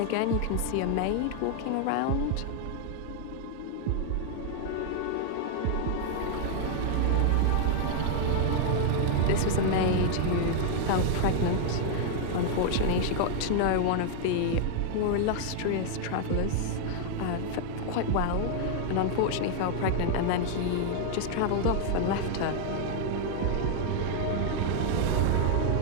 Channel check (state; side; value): different; both; correlation 0.00